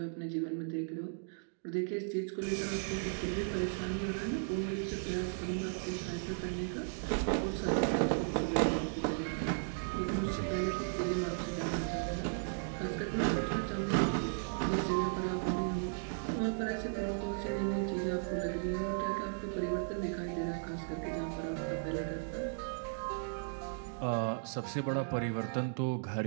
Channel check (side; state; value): left; silent; digital silence